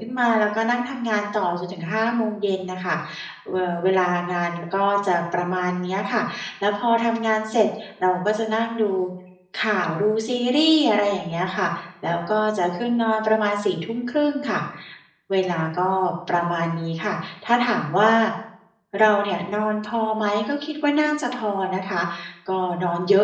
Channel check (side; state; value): both; identical; correlation 1.00